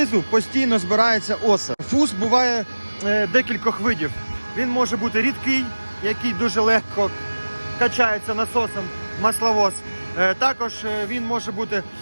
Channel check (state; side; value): inverted; both; correlation -1.00